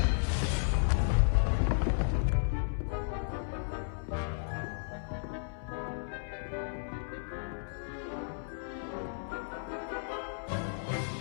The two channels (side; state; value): right; silent; 55 dB below the other